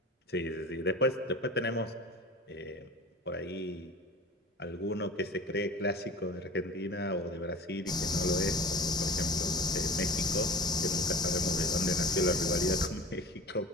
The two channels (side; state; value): both; normal; correlation 0.37